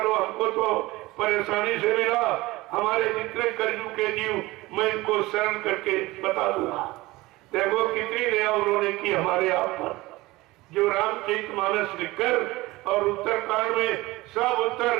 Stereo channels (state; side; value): quieter; left; 19.9 dB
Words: हमको तो परेशानी से मिला, हमारे जितने कर्जू के जीव मैं इनको शरण करके बता दूंगा। देखो कितनी दया उन्होंने की हमारे आप पर। जो रामचरितमानस लिखकर और उत्तरकांड में सब